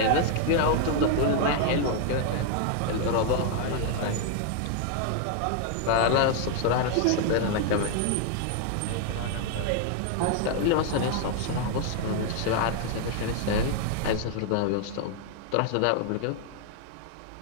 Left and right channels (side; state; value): both; different; correlation 0.00